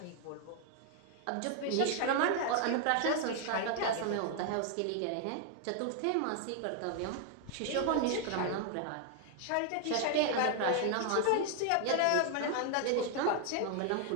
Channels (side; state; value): both; different; correlation 0.00